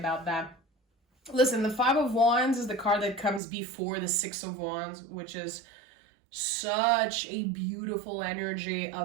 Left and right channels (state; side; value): drops out; left; at 3.4 s